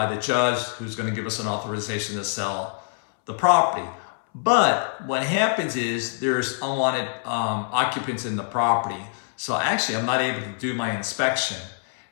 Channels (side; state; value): right; silent; 62 dB below the other